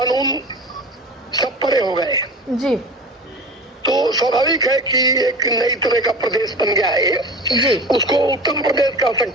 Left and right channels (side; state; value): both; normal; correlation 0.35